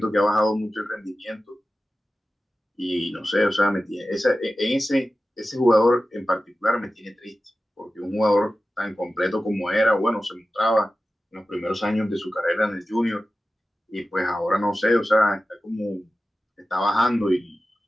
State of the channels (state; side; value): normal; both; correlation 0.94